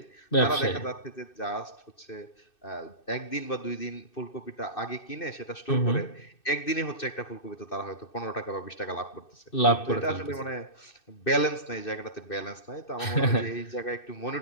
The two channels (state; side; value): late; right; 2.6 ms